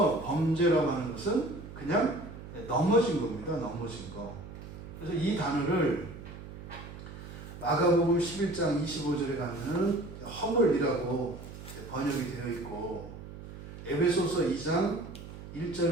범죄라고 하는 것은 그냥 넘어진 겁니다. 넘어진 거. 그래서 이 단어를 마가복음 11장 25절에 가면은 허물이라고 번역이 되어 있고, 에베소서 2장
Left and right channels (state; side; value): noise; right; hum, 13 dB below the sound